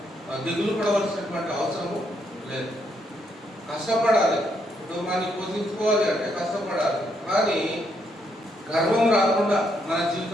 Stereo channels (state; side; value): normal; both; correlation 0.76